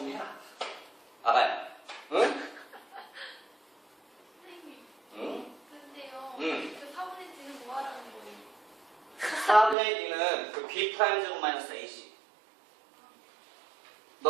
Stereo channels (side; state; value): left; drops out; at 9.8 s